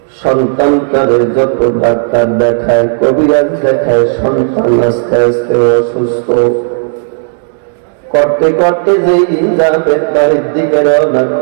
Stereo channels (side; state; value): left; silent; digital silence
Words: সন্তানটারে যত ডাক্তার দেখায়, কবিরাজ দেখায়, সন্তান আস্তে আস্তে অসুস্থ। করতে করতে যেই দিন যাবেন বাড়ির দিকে রওনা